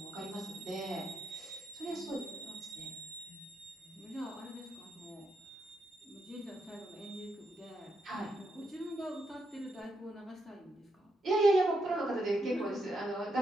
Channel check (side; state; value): both; normal; correlation 0.81